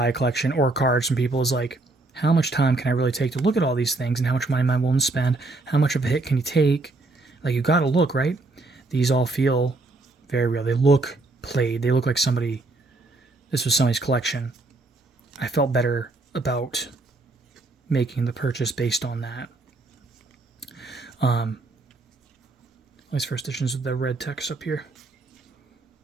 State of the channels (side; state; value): left; quieter; 3.2 dB